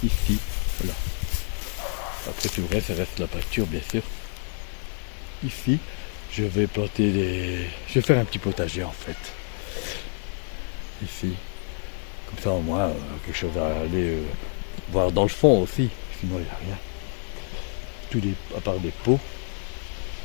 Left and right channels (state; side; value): silent; right; 58 dB below the other